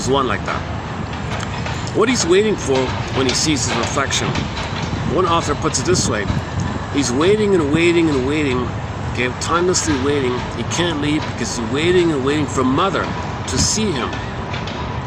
one like that. What he's waiting for when he sees his reflection, one author puts it this way: he's waiting and waiting and waiting, okay, timelessly waiting. He can't leave because he's waiting and waiting for mother to see him,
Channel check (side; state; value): both; identical; correlation 1.00